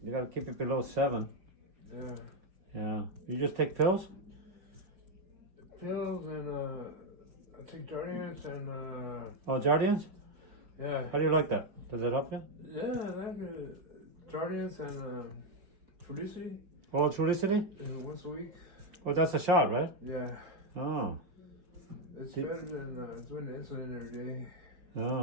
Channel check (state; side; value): late; left; 5.3 ms